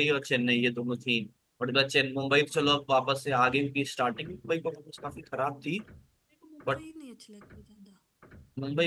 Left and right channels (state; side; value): identical; both; correlation 1.00